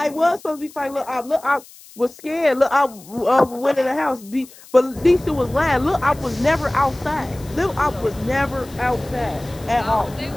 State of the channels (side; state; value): left; noise; hiss, 22 dB below the sound